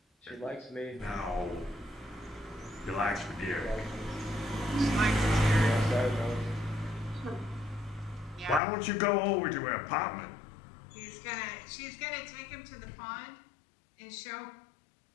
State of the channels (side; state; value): right; drops out; at 8.6 s